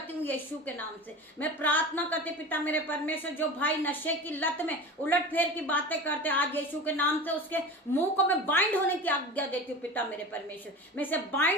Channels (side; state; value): both; normal; correlation 0.32